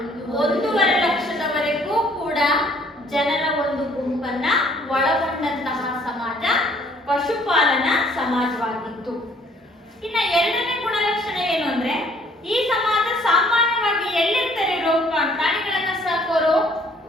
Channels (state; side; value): normal; both; correlation 0.60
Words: 1.5 ಲಕ್ಷದವರೆಗೂ ಕೂಡ ಜನರ ಒಂದು ಗುಂಪನ್ನ ಒಳಗೊಂಡಂತಹ ಸಮಾಜ ಪಶುಪಾಲನಾ ಸಮಾಜವಾಗಿತ್ತು. ಇನ್ನ ಎರಡನೇ ಗುಣಲಕ್ಷಣ ಏನು ಅಂದ್ರೆ ಈ ಸಮಾಜ ಸಾಮಾನ್ಯವಾಗಿ ಎಲ್ಲಿರ್ತಾರೆ? ಪ್ರಾಣಿಗಳನ್ನ ಸಾಕೋರು